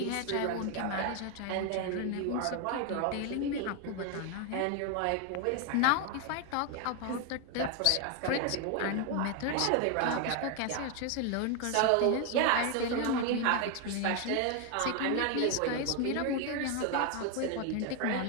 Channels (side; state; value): both; different; correlation 0.01